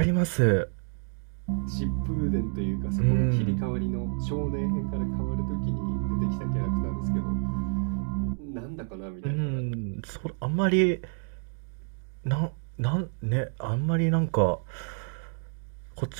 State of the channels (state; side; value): silent; left; 59 dB below the other